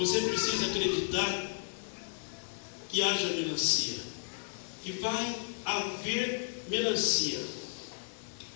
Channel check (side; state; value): right; silent; digital silence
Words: precisa acreditar que haja melancia, que vai haver melancia.